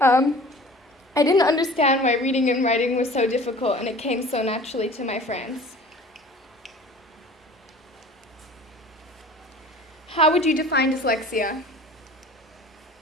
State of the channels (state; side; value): normal; both; correlation 0.44